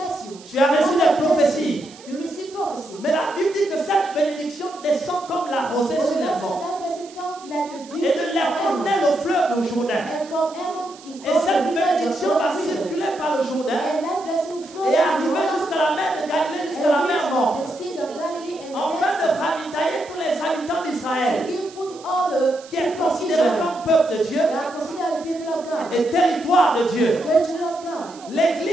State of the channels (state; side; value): noise; right; hiss, 21 dB below the sound